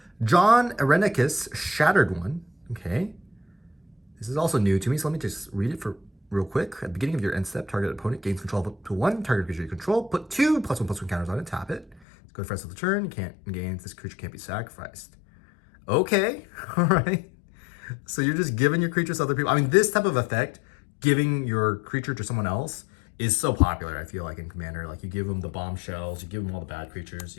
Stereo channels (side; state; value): right; drops out; at 12.0 s